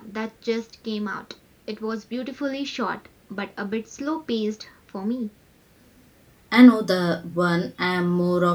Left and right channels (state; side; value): identical; both; correlation 1.00